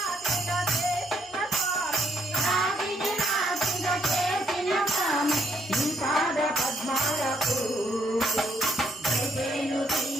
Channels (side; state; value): both; normal; correlation 0.71